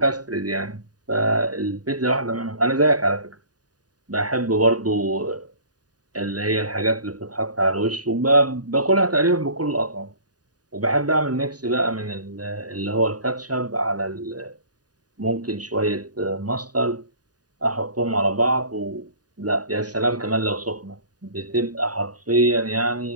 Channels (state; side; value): late; left; 0.68 ms